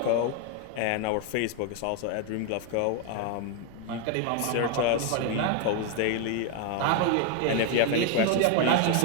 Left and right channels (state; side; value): different; both; correlation 0.01